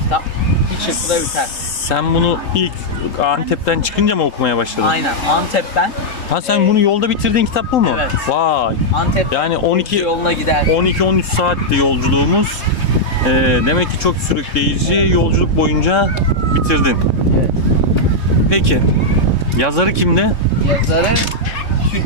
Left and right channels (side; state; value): right; late; 3.8 ms